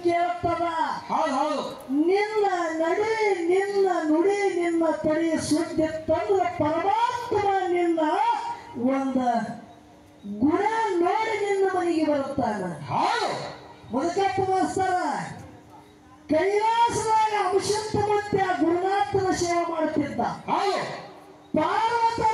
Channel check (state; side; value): identical; both; correlation 1.00